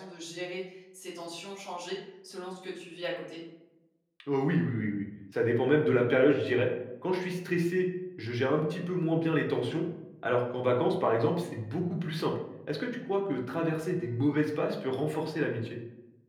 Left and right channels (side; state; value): both; identical; correlation 1.00